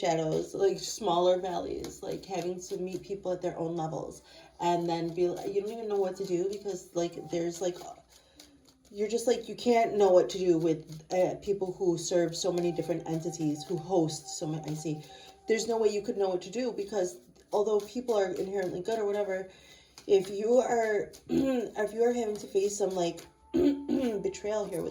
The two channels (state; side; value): identical; both; correlation 1.00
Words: like smaller valleys, like having to meet people at their own levels. And then you don't even know what to do because, like, there's like, you're just like, you can't know what to do with people who serve so many different entities, who host so many. I see. There's no way you could know what to do because although people are inherently good or whatever, if you are having to face some like betrayal here